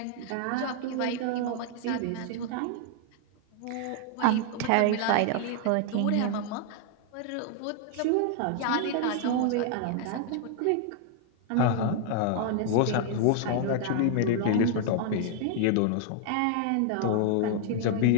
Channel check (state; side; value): different; both; correlation 0.00